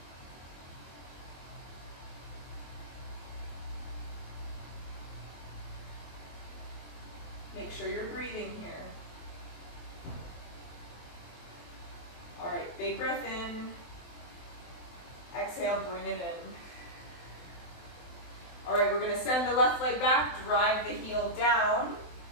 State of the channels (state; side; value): late; right; 23 ms